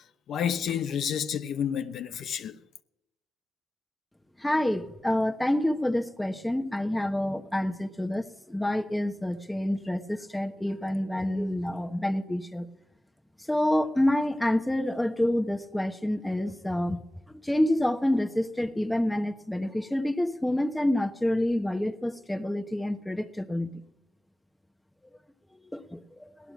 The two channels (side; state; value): both; normal; correlation 0.96